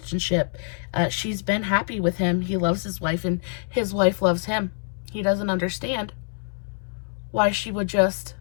She's been happy with him. He loves his wife, and his wife loves him. He doesn't understand why she would just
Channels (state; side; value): silent; right; 62 dB below the other